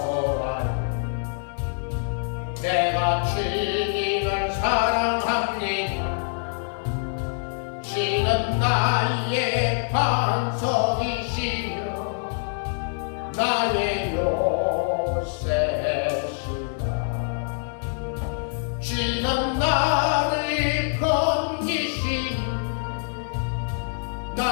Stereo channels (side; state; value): right; silent; digital silence